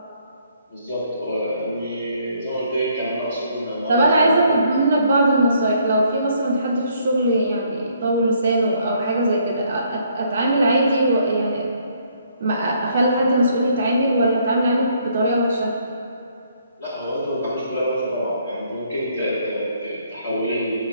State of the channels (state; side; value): inverted; both; correlation -0.67